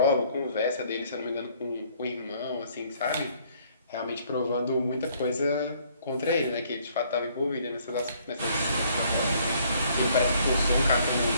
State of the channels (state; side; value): inverted; both; correlation -0.63